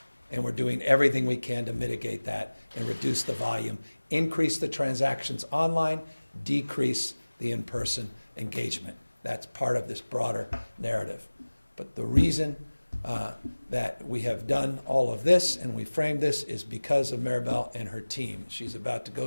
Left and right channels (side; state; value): both; inverted; correlation -1.00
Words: and we're doing everything we can to mitigate that and reduce the volume, increase the transactions online, decrease the in-person engagement. That's part of this broader narrative. But the reason that we have done all of this and we framed this is because of Maribel and her team. She's about to